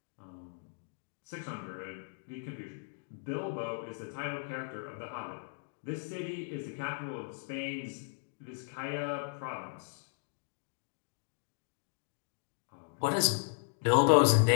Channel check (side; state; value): right; silent; digital silence